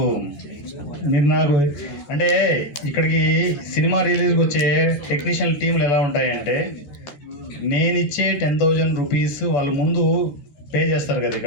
మీరు నాకు అంటే ఇక్కడికి సినిమా రిలీజ్కి వచ్చే టెక్నీషియన్ టీంలు ఎలా ఉంటాయంటే, నేను ఇచ్చే 10,000 రూపీస్ వాళ్ళు ముందు పే చేస్తారు కదా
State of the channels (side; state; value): right; late; 14 ms